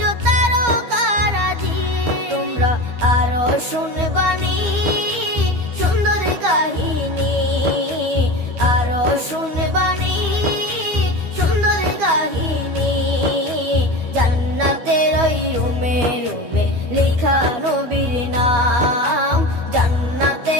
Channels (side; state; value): left; late; 12 ms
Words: তারকারাজি। তোমরা আরো শুনবানি সুন্দর কাহিনী, আরো শুনবানি সুন্দর কাহিনী। জান্নাতের ওই রুমে রুমে লেখা নবীর নাম,